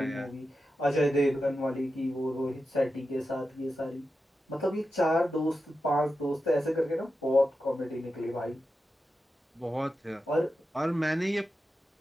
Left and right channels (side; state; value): both; normal; correlation 0.90